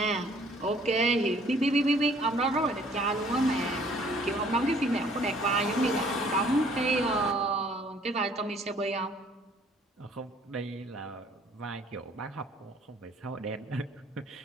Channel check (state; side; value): normal; both; correlation 0.59